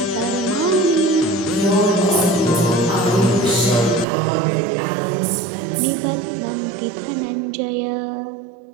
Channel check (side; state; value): left; drops out; at 4.0 s